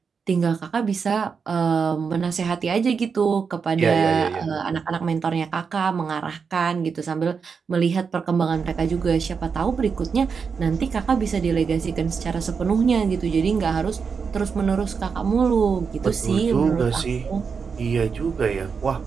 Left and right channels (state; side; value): quieter; left; 5.7 dB